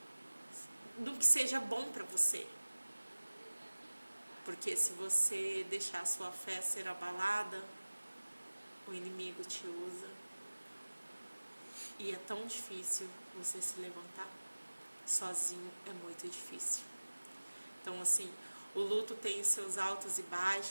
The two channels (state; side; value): inverted; both; correlation -1.00